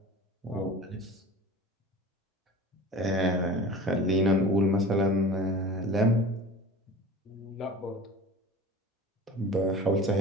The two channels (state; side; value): normal; both; correlation 0.39